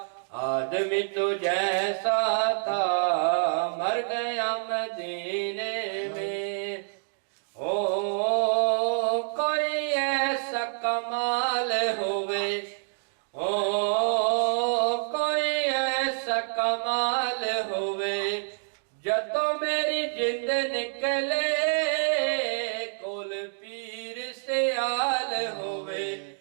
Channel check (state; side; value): silent; left; digital silence